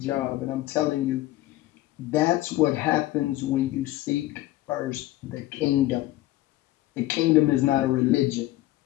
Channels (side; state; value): right; quieter; 16.4 dB